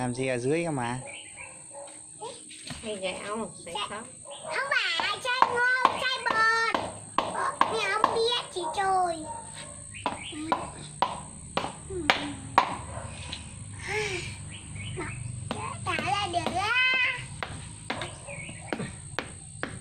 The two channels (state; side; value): identical; both; correlation 1.00